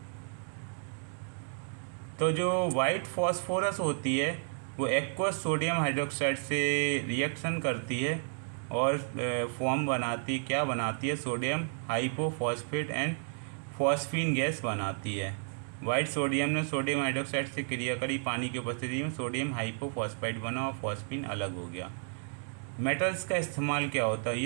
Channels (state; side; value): silent; left; 56 dB below the other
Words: तो जो white phosphorus होती है वो aqueous sodium hydroxide से reaction करती है और form बनाती, क्या बनाती है? Sodium hypophosphate and phosphine gas बनाती है। वाइट सोडियम ने सोडियम हाइड्रोक्साइड से क्रिया करी, पानी की उपस्थिति में सोडियम हाइपोफॉस्फाइड बना और फॉस्फीन अलग हो गया। मेटल्स का इस्तेमाल क्या होता है?